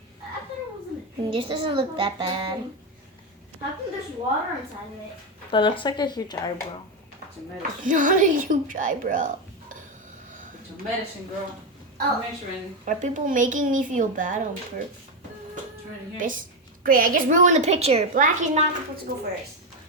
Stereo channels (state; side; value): normal; both; correlation 0.10